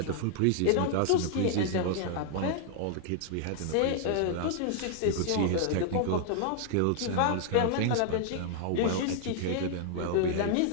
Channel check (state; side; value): different; both; correlation -0.01